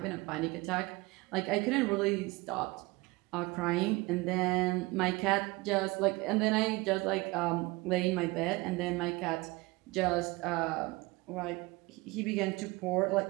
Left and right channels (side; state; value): left; quieter; 22.8 dB